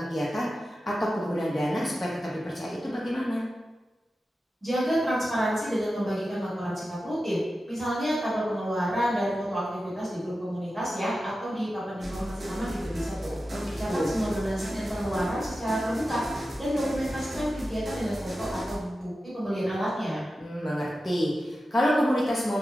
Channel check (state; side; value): normal; both; correlation 0.93